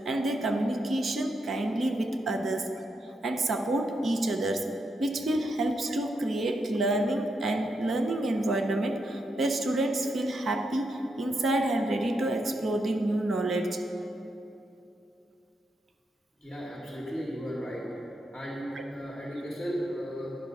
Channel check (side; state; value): both; normal; correlation 0.82